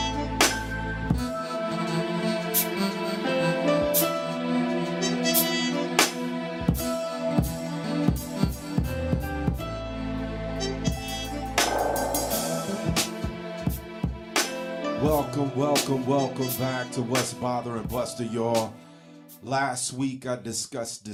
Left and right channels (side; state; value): both; identical; correlation 1.00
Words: back to What's Bothering Buster, y'all. Last week I discussed